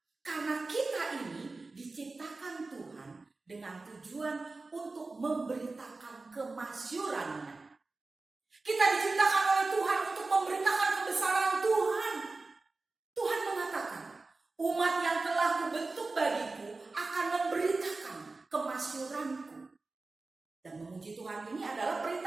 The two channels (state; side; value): quieter; left; 3.6 dB